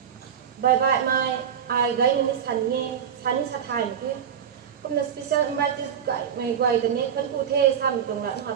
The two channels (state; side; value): quieter; left; 8.3 dB